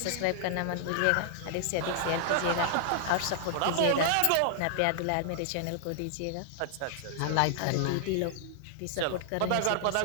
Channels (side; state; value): both; different; correlation -0.01